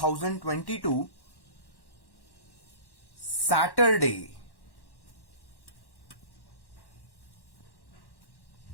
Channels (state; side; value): late; right; 1.1 ms